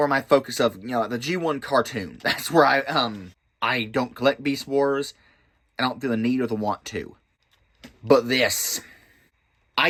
my focus of, the G1 cartoon. That's where I don't collect Beast Wars. I don't feel the need or the want to. But this,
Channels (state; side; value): identical; both; correlation 1.00